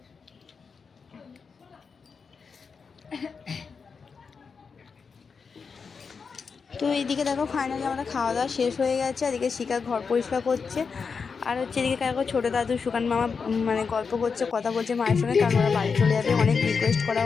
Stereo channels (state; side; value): quieter; right; 5.4 dB